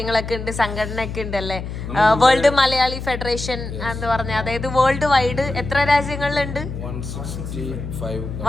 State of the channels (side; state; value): left; noise; hum, 7 dB below the sound